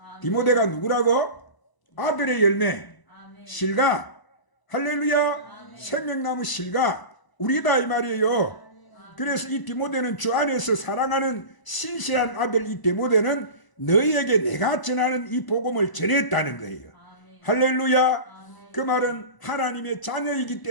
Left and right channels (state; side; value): late; right; 1.0 ms